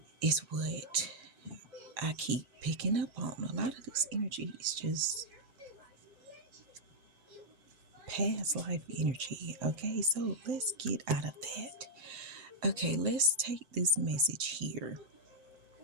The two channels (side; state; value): left; late; 7.7 ms